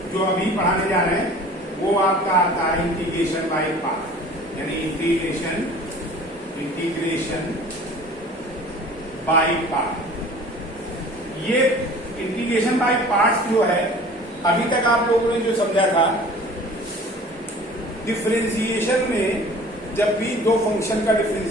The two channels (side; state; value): both; normal; correlation 0.46